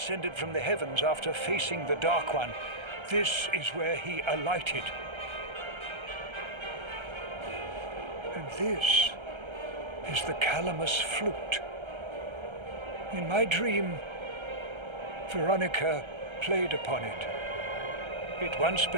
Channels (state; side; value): late; left; 1.3 ms